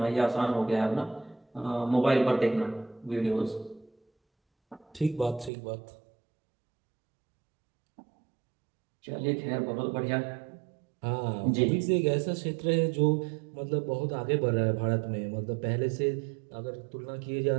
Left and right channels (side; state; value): left; drops out; at 5.5 s